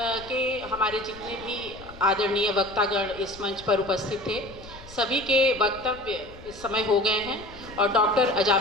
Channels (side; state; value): left; noise; rumble, 19 dB below the sound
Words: के हमारे जितने भी आदरणीय वक्तागण इस मंच पर उपस्थित थे, सभी के वक्तव्य इस समय हो गए हैं और डॉक्टर